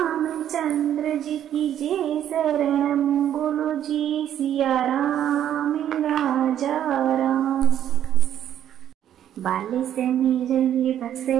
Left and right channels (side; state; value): left; quieter; 10.6 dB